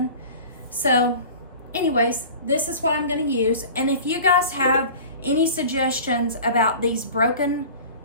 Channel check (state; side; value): inverted; both; correlation -0.39